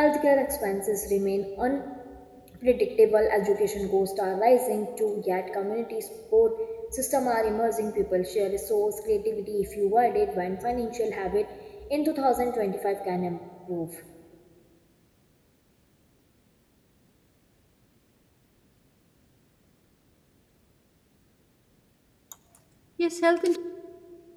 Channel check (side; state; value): both; identical; correlation 1.00